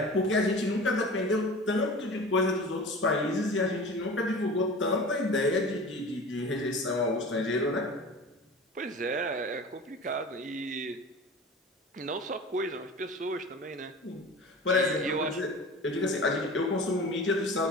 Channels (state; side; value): normal; both; correlation 0.37